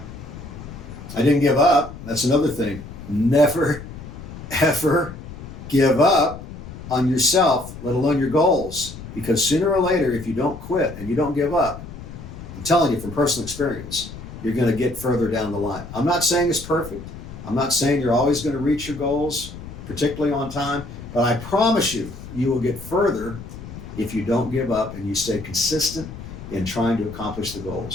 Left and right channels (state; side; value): noise; left; rumble, 13 dB below the sound